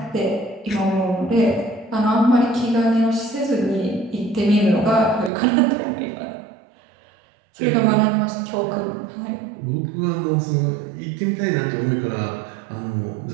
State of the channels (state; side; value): drops out; left; at 5.3 s